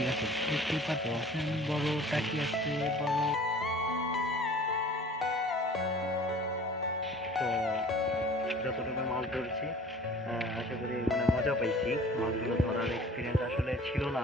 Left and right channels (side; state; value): both; normal; correlation 0.47